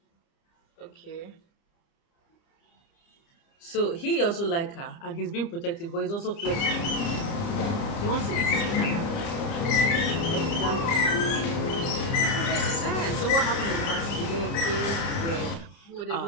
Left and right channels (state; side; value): late; right; 30 ms